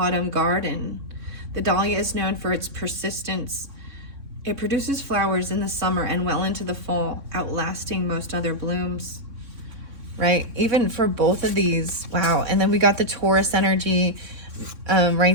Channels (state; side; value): late; left; 3.7 ms